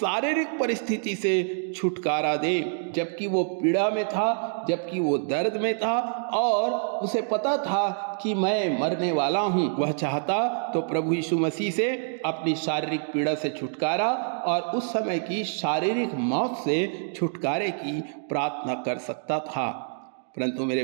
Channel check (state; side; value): silent; left; digital silence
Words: परिस्थिति से छुटकारा दे, जबकि वो पीड़ा में था, जबकि वो दर्द में था और उसे पता था कि मैं मरने वाला हूँ। वह चाहता तो प्रभु यीशु मसीह से अपनी शारीरिक पीड़ा से छुटकारा और उस समय की शारीरिक मौत से छुटकारे की प्रार्थना कर सकता था। परंतु